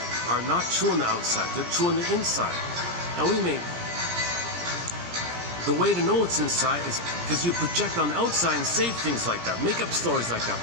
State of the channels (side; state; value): left; late; 17 ms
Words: not true on the outside. They're true on the inside. And the way to know it's inside is because you project on the outside and say things like that, make up stories like that.